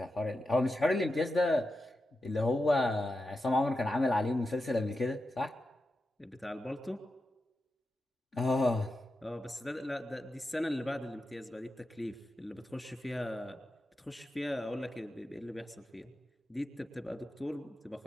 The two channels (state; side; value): normal; both; correlation 0.89